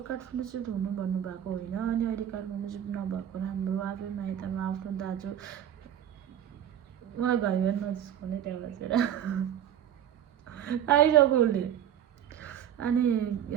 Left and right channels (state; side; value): quieter; left; 10.1 dB